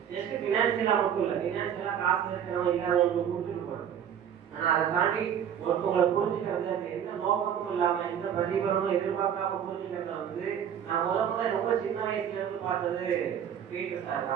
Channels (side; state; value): left; quieter; 8.9 dB